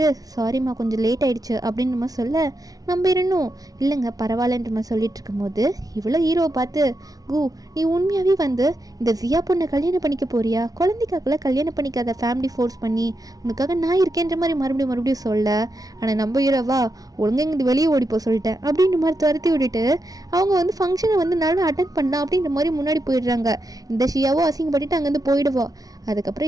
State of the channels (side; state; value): left; late; 0.18 ms